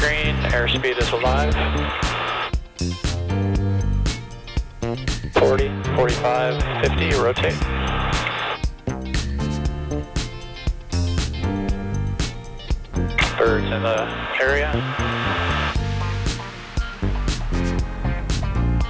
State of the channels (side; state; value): both; identical; correlation 1.00